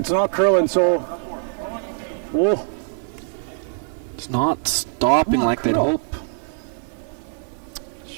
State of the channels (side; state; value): left; silent; 59 dB below the other